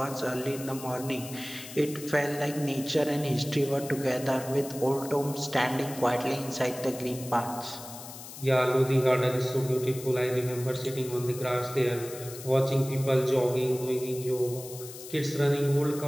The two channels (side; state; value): left; noise; hiss, 13 dB below the sound